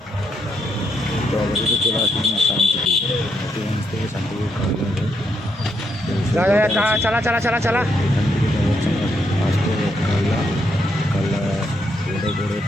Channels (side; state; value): both; normal; correlation 0.77